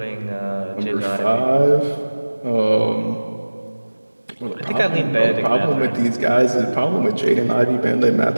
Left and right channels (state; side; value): inverted; both; correlation -1.00